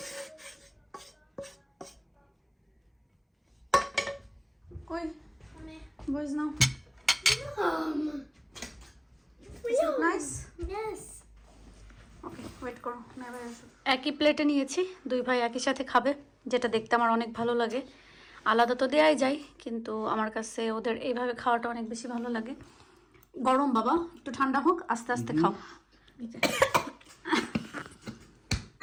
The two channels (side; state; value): both; identical; correlation 1.00